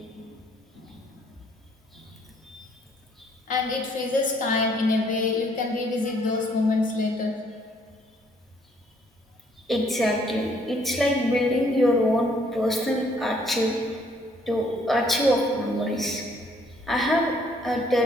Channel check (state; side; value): normal; both; correlation 0.65